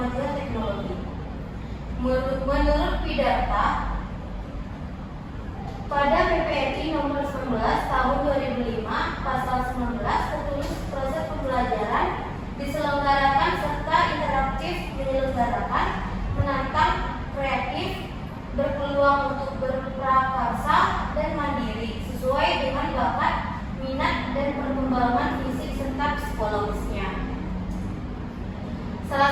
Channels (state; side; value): identical; both; correlation 1.00